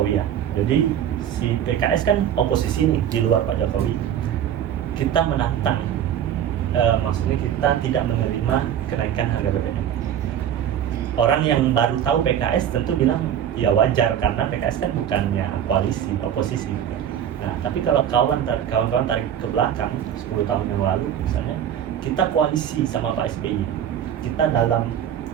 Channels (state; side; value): quieter; left; 9.9 dB